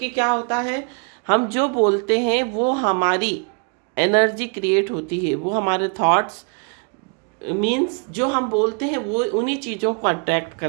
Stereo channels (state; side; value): quieter; left; 36.7 dB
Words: क्या होता है, हम जो बोलते हैं वो हमारी एनर्जी क्रिएट होती है, वो हमारे थॉट्स मीन्स जो हम बोलते हैं वो उन्हीं चीज़ों को अट्रैक्ट